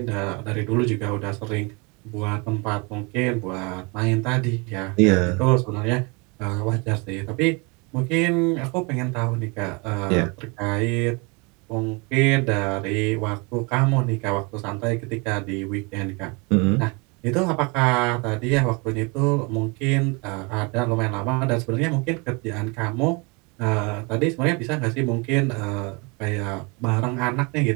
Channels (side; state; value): left; quieter; 29.9 dB